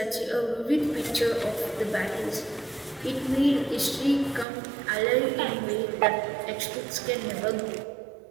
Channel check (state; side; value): drops out; left; at 4.5 s